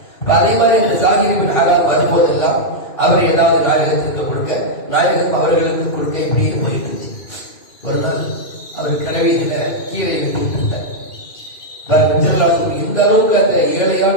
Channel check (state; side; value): late; right; 2.5 ms